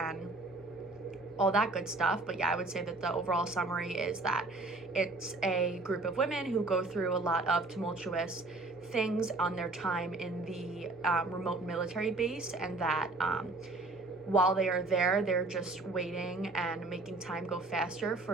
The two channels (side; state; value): left; quieter; 3.1 dB